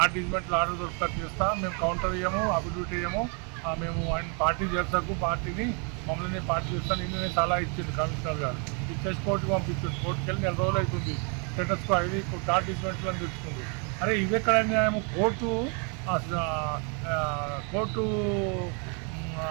డిజిమెంటల్ ఆర్డర్ దొరుకుతా చేస్తా, మేము కౌంటర్ ఇవ్వము, అఫిడవిట్ ఇవ్వము, మేము ఆయన పార్టీ చేస్తాకు, పార్టీని మమ్మల్ని పార్టీ చేస్తాను. నేను సలహా ఇచ్చింది కమిషనర్ గారు. ఇచ్చేసి కోర్టుకు పంపించింది. కోర్టుకు వెళ్ళి 4 రోజులు అవుతుంది. స్టేటస్కో అది నాట్ డిజిమెంటల్ అని తెచ్చుకుంది. అరే ఇవి ఎక్కడ న్యాయం? కోర్టు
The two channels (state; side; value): quieter; left; 37.2 dB